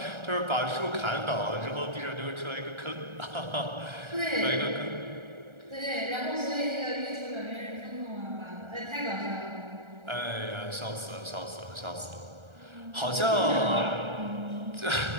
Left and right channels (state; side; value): late; left; 1.3 ms